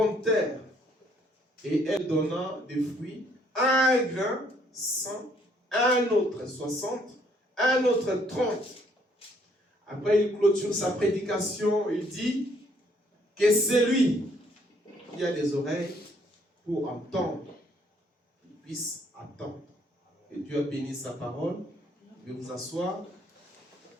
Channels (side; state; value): both; normal; correlation 0.66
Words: terre. Et elle donna des fruits, un grain, 100, un autre 60, un autre 30. Après, il clôture sa prédication. Il dit que c'est lui qui a des oreilles pour entendre, qu'il puisse attendre. Et Dieu a béni sa parole. Je vais vous asseoir.